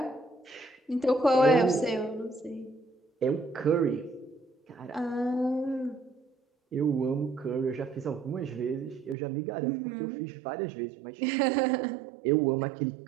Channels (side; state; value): left; drops out; at 9.2 s